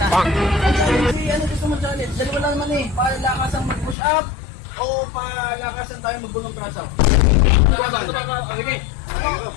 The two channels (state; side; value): drops out; right; at 4.0 s